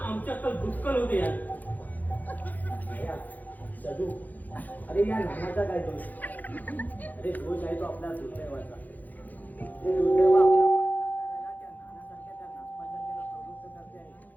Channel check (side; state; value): right; late; 0.082 ms